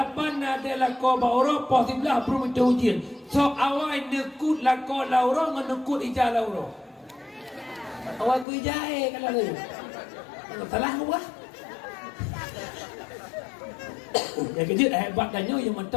ada lako bawa poh 11 belum itu je. So awal nekut lako lauro ngenekut ijah lauro. Awal ku ijah kalau ni. Salah gua. Yang kejut hebat danyo yang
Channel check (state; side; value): drops out; right; at 8.5 s